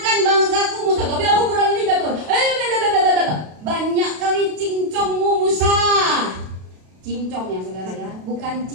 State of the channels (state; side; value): late; left; 32 ms